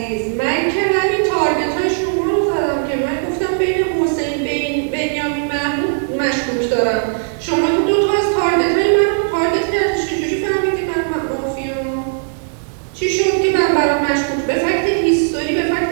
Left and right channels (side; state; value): left; silent; digital silence